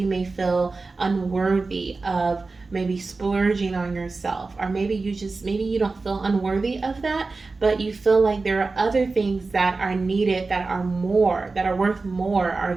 may feel unworthy of maybe splurging on yourself, or maybe you don't feel unworthy of that, but you feel like there are other things that are needed, that are worth more, or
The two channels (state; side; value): quieter; left; 3.8 dB